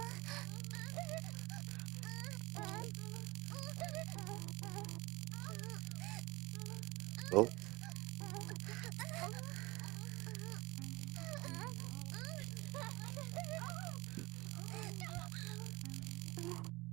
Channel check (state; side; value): quieter; left; 22.3 dB